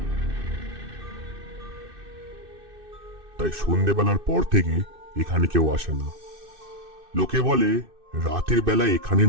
তাই সন্ধেবেলার পর থেকে এখানে কেউ আসে না। লোকে বলে রাতের বেলায় এখানে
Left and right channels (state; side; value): late; left; 2.6 ms